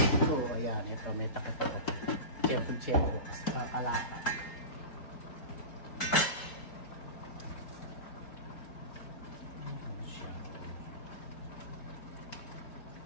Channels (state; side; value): late; right; 4.6 ms